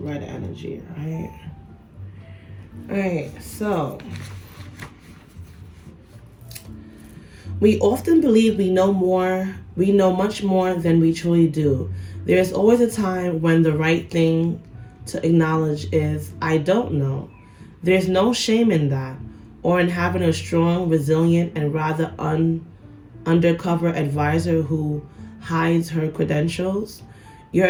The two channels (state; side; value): identical; both; correlation 1.00